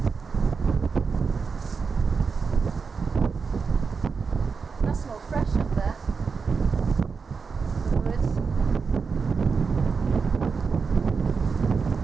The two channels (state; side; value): quieter; left; 5.2 dB